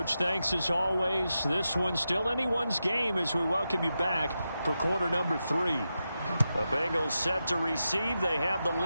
thanks as always. This one's still anyone's game as we welcome you back for quarter number 3. The Bengals set to receive. They have the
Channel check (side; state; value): both; inverted; correlation -0.89